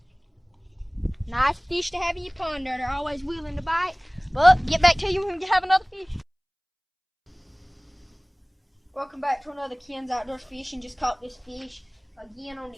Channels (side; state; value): both; identical; correlation 1.00